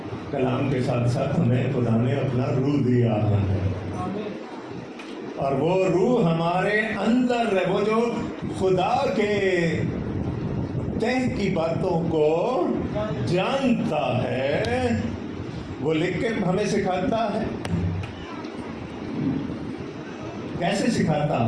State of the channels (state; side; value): identical; both; correlation 1.00